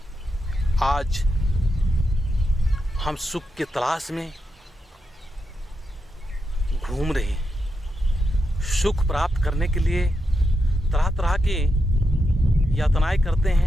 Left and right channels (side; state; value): both; normal; correlation 0.85